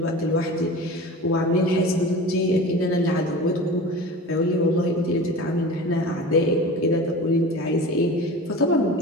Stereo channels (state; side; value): normal; both; correlation 0.35